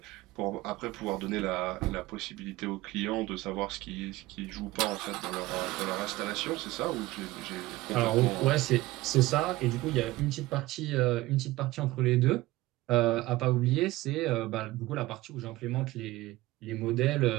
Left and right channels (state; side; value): quieter; left; 18.5 dB